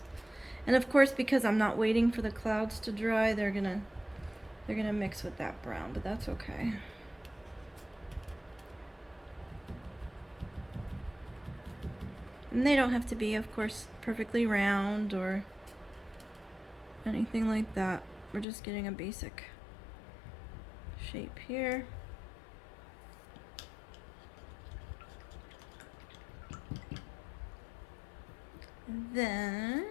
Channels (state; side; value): drops out; right; at 18.4 s